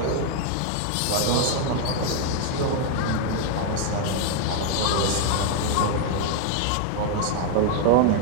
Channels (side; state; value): both; different; correlation 0.00